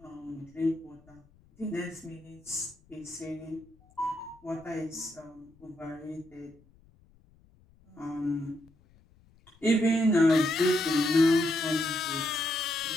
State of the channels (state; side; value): noise; left; rumble, 29 dB below the sound